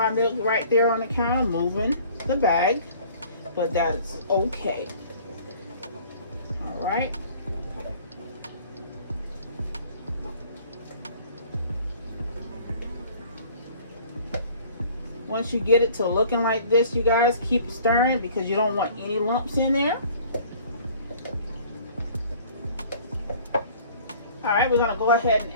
milk right there on the counter moving the bag, but that's okay. Alright. Once you get it to looking like this, you guys keep stirring because you don't want any lumps in there. All right, we're gonna go ahead and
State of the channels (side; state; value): both; inverted; correlation -0.51